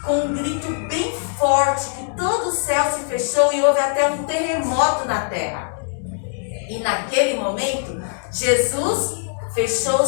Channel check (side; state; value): right; silent; digital silence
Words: com um grito bem forte, que todo o céu se fechou e houve até um terremoto na terra. E naquele momento, Jesus fechou